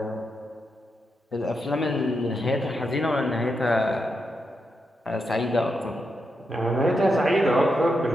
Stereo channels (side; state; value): both; normal; correlation 0.84